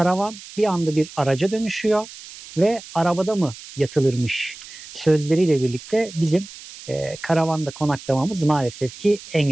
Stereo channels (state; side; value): noise; right; hiss, 16 dB below the sound